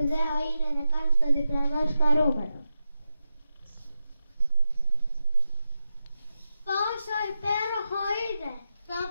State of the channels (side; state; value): both; inverted; correlation -0.89